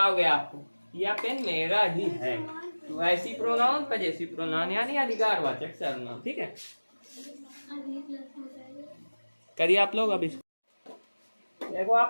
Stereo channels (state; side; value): inverted; both; correlation -1.00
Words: आपको, या पेन मेरा ही है। तो ऐसी प्रोनाउन पजेसिव प्रोनाउन यानी अधिकारवाचक सर्वनाम, ठीक है। करिए आप लोग। अब इसको देखो